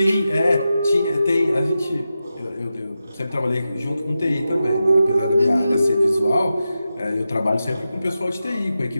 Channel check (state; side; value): inverted; both; correlation -0.91